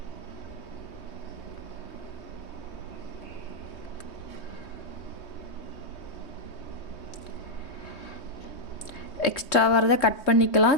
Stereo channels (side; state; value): right; late; 3.2 ms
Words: எக்ஸ்ட்ரா வரதை கட் பண்ணிக்கலாம்.